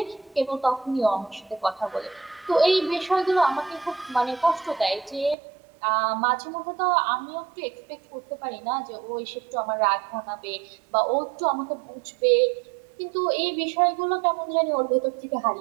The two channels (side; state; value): left; drops out; at 5.4 s